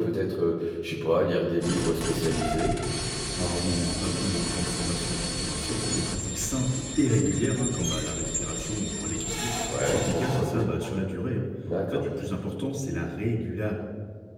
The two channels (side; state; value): both; identical; correlation 1.00